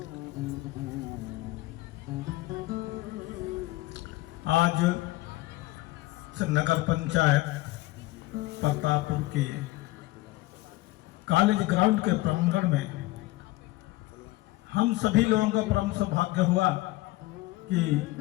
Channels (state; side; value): quieter; right; 19.2 dB